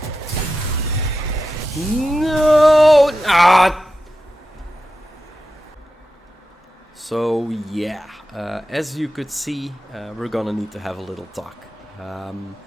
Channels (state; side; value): normal; both; correlation 0.91